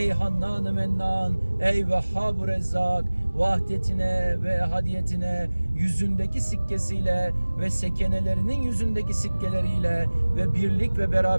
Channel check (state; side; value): inverted; both; correlation -1.00